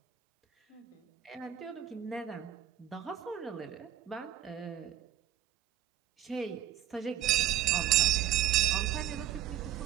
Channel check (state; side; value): quieter; left; 12.2 dB